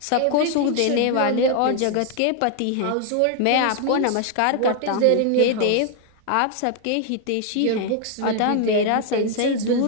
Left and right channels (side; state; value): both; different; correlation 0.00